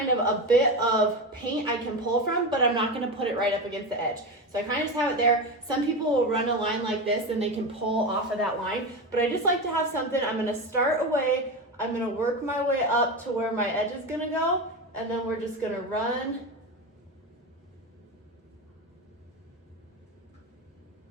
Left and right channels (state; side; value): normal; both; correlation 0.20